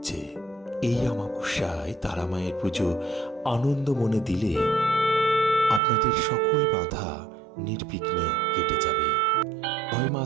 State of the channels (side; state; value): left; drops out; at 5.8 s